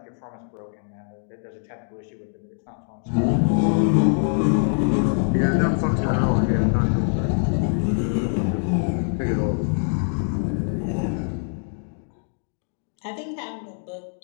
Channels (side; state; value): right; silent; 63 dB below the other